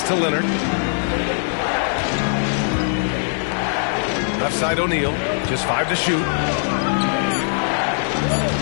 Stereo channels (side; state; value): right; silent; 60 dB below the other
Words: to Leonard. Left side O'Neal. Just 5 to shoot.